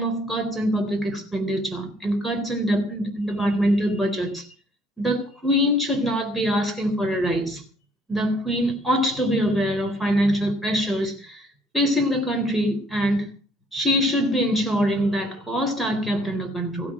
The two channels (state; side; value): normal; both; correlation 0.63